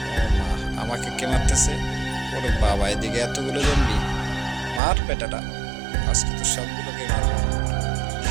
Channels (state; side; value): drops out; left; at 4.8 s